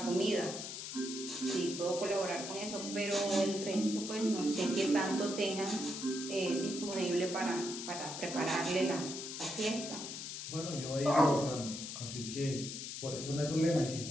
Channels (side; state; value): left; noise; hiss, 7 dB below the sound